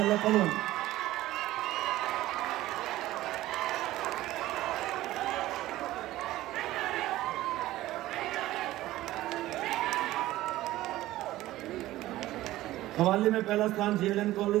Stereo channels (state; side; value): quieter; left; 15.9 dB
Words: पलवल। कव्वाली में पहला स्थान JLN